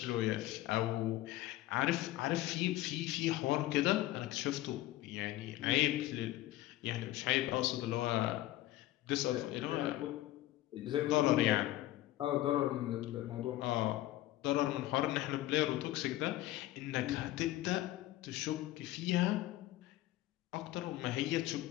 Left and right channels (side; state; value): right; quieter; 15.8 dB